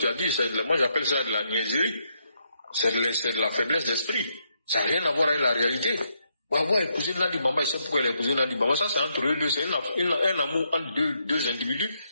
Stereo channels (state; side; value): inverted; both; correlation -0.78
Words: as dit. Moi j'appelle ça de la niaiserie. C'est de la faiblesse d'esprit. Ça n'a rien à voir avec la réalité. Gbagbo a épousé Nandi Bamba, il sait pourquoi il a épousé Nandi Bamba. Ça, c'est entre eux deux. C'est un amour entre deux individus.